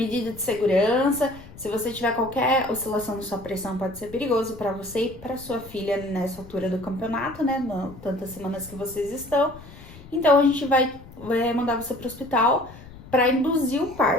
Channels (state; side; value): noise; left; rumble, 18 dB below the sound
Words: de segurança, se você tiver qualquer oscilação na sua pressão, pode ser perigoso pra você e pra sua filha nessa altura do campeonato, né, tantas semanas que vocês estão. Então a gente vai mandar você pro hospital pra induzir o